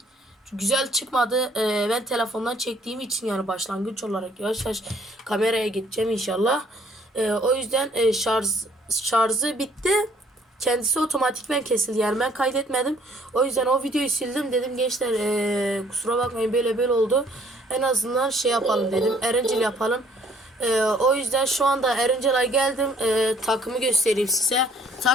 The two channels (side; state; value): both; normal; correlation 0.61